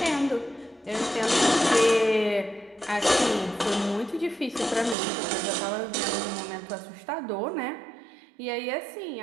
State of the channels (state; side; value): drops out; left; at 5.0 s